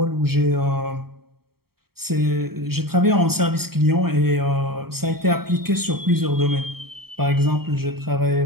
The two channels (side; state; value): left; late; 0.95 ms